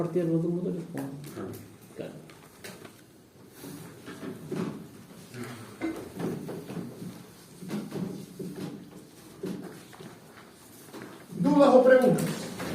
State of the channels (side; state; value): both; identical; correlation 1.00